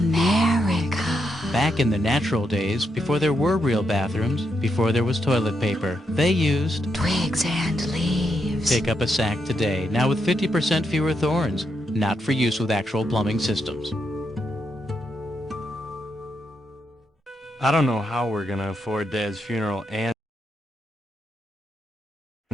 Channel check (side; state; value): both; normal; correlation 0.82